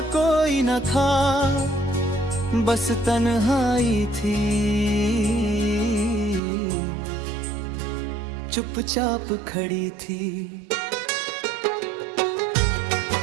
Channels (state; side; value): drops out; left; at 6.4 s